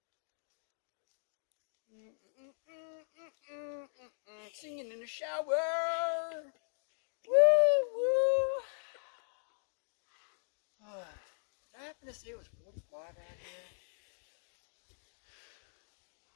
Singing in the shower. Woo woo. Did I happen to say it was 45 out here?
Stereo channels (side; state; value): right; silent; digital silence